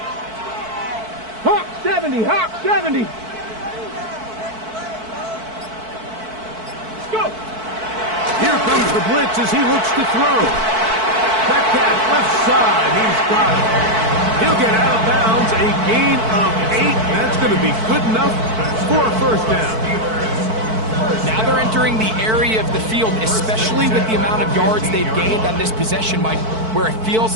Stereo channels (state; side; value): late; left; 4.5 ms